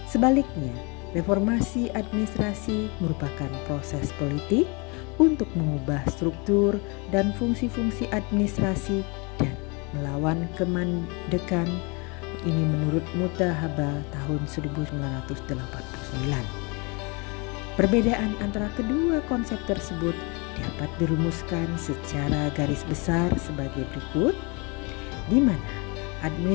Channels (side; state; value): right; quieter; 30.1 dB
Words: Sebaliknya, reformasi administrasi merupakan proses politik untuk mengubah struktur dan fungsi-fungsi administrasi dan melawan kemandekan, ini menurut Mutahaba tahun 1989. Perbedaan antara kedua konsep tersebut dapat dirumuskan secara garis besar sebagai berikut, di mana